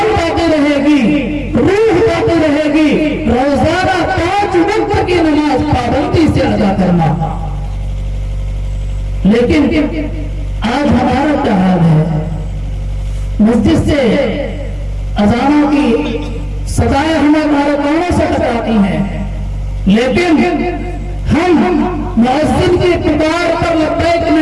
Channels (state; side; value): identical; both; correlation 1.00